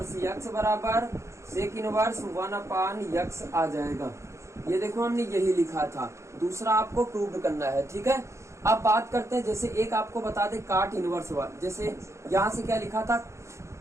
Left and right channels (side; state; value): left; late; 0.14 ms